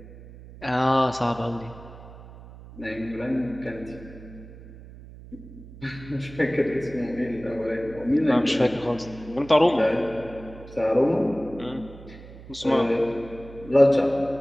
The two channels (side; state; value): right; noise; hum, 17 dB below the sound